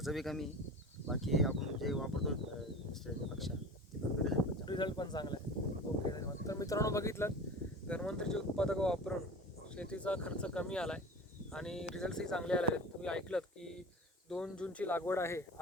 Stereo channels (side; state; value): both; normal; correlation 0.35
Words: बी कमी. बाकी आपण जे वापरतो दुसऱ्यापेक्षा ते पण रिझल्ट पण चांगला आहे. ओके, धन्यवाद. तर मित्रांनो, बघितलं, धन्वंतरीचे उत्पादक वापरून शेतीचा खर्च कमी आला आहे आणि रिझल्ट्सही चांगले आले आहेत. तुम्ही ऐकलं की 2 जूनची लागवड आहे,